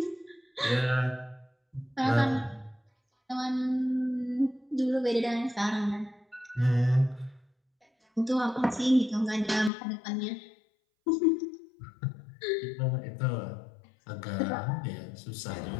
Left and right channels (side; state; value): right; drops out; at 9.7 s